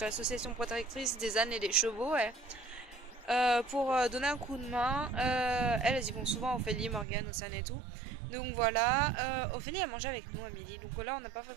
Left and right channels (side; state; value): left; drops out; at 7.1 s